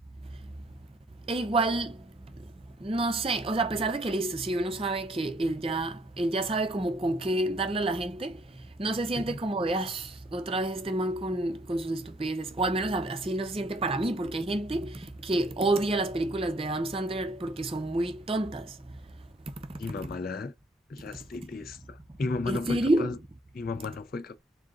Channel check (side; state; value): both; normal; correlation 0.64